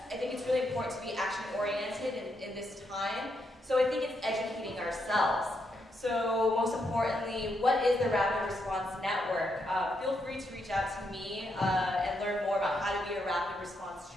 I think it's really important to be action-oriented in this time. So I think it's educating ourselves. So most importantly, what is the Rapid Response Network? Feel free to reach out to me and learn more about how to be a rapid response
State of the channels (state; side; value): normal; both; correlation 0.79